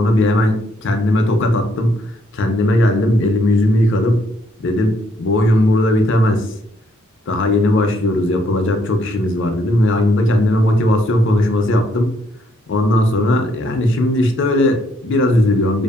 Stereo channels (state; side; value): normal; both; correlation 0.70